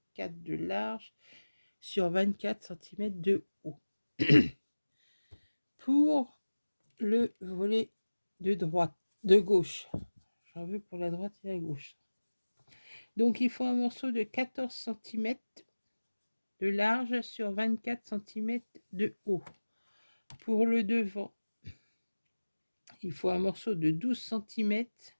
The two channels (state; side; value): inverted; both; correlation -1.00